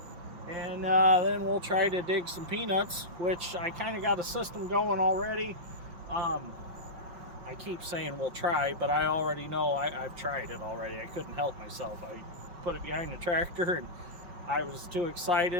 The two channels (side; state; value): left; late; 5.9 ms